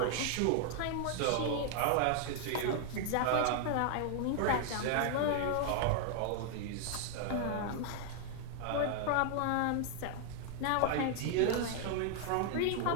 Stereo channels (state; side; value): different; both; correlation 0.00